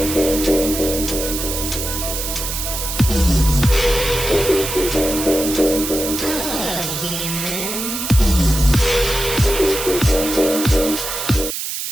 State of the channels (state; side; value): noise; right; hiss, 4 dB below the sound